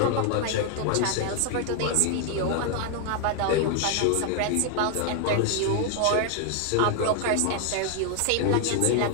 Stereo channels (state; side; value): different; both; correlation 0.00